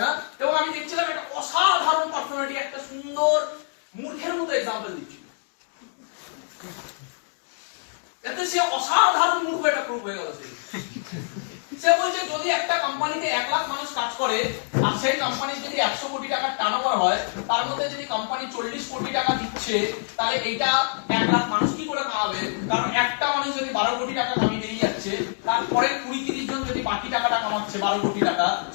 না। এবং আমি দেখছিলাম একটা অসাধারণ পার্সোনালিটি একটা সুন্দর মূর্খের মতো এক্সাম্পল দিচ্ছিল, এতে সে অসাধারণ মূর্খ এটা প্রুফ হয়ে গেল। সে বলছে যদি একটা কোম্পানিতে 1 লাখ মানুষ কাজ করে আর সেই কোম্পানির যদি 100 কোটি টাকার টার্নওভার হয়, তার মধ্যে যদি কোম্পানি 40 কোটি টাকা দিচ্ছে, তাহলে এইটা 1 লাখ মানুষ কি করে কামাবে? কারণ একটা মানুষ যদি 12 কোটি টাকা কামিয়ে বেরিয়ে যাচ্ছে, তারপরে 20-30 জন যদি বাকি টাকাটা কামাচ্ছে 12 কোটি টাকা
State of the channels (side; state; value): right; silent; digital silence